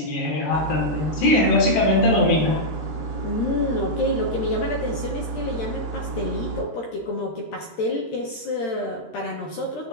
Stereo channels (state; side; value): late; right; 13 ms